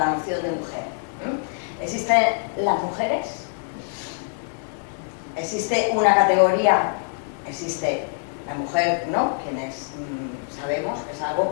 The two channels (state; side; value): silent; right; 62 dB below the other